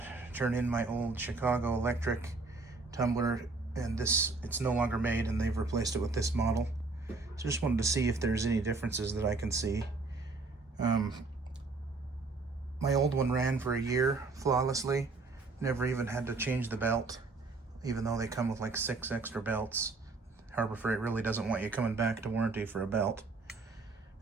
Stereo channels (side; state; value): left; quieter; 3.7 dB